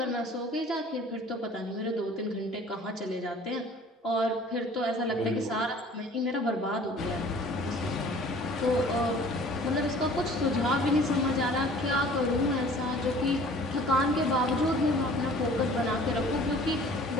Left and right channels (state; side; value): normal; both; correlation 0.49